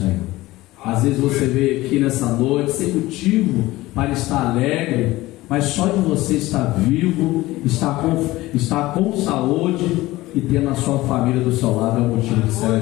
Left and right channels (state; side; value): quieter; right; 18.3 dB